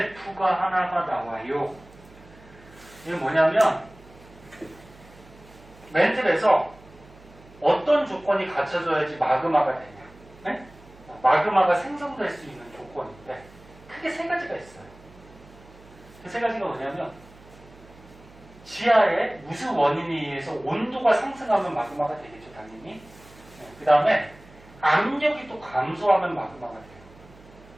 하나가 나와요. 이게 뭐냐면 맨틀에서 어떤 조건이 갖춰져야지 마그마가 되냐. 네? 마그마가 생성될 수 있는 조건인데 크게 세 가지가 있어요. 그 세 가지가 뭐냐면 지하에 무슨 원인에 의해서 온도가 상승하면 마그마가 되겠죠, 당연히. 그 다음에 압력이 또 감소하면 마그마가 돼요.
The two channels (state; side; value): noise; right; hum, 23 dB below the sound